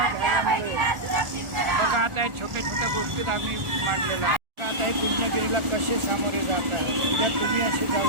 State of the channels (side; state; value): left; late; 1.4 ms